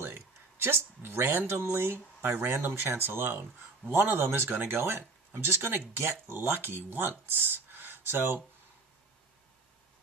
just randomly, by random chance alone, one of them is going to go in. I'm just going to get lucky once. So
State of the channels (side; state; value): left; quieter; 3.8 dB